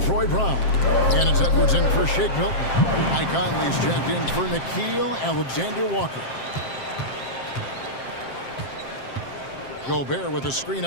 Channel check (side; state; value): right; late; 7.6 ms